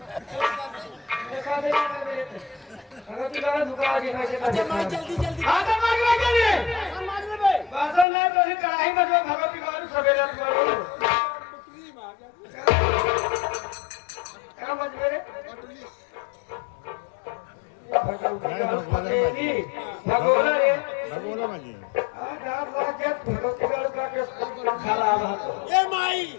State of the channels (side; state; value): right; drops out; at 8.1 s